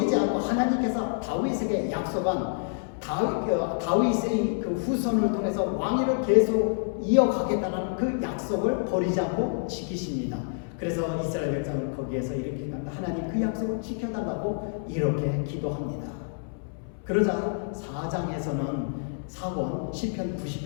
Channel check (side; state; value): right; silent; 60 dB below the other